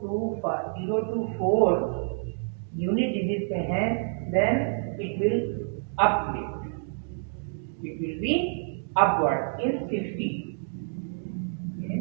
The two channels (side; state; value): left; silent; digital silence